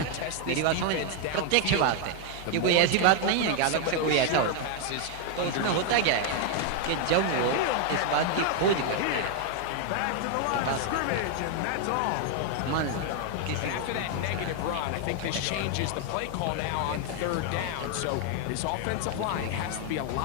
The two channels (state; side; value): different; both; correlation 0.00